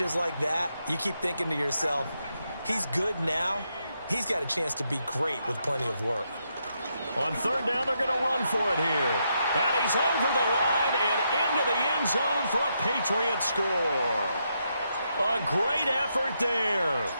like that, you keep thinking to yourself, he's good now. He's got a chance to be great with plenty of work. On 3rd down, they're going to run for it here. And he's over the line and into the end zone for a Patriot score. A great effort there.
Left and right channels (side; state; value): both; inverted; correlation -0.80